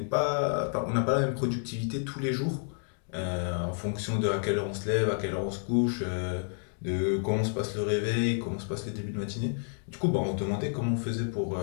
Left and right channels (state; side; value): silent; right; digital silence